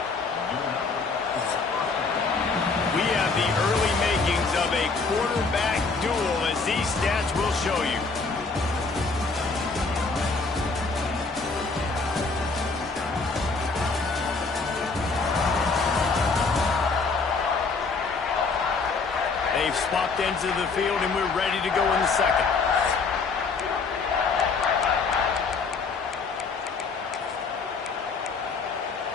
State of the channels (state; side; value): quieter; right; 4.3 dB